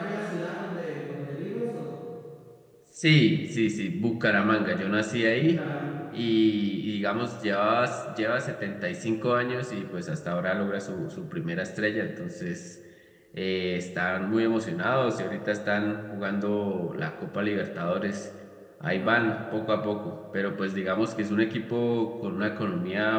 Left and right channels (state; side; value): identical; both; correlation 1.00